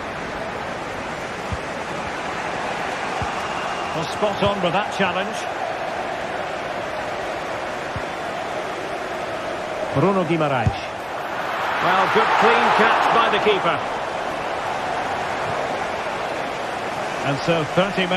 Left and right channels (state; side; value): identical; both; correlation 1.00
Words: Well, spot on with that challenge. Bruno Guimaraes. Well, good clean catch by the keeper. And so 30